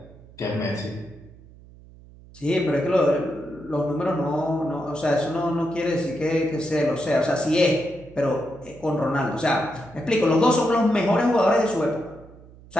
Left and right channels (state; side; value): noise; right; hum, 22 dB below the sound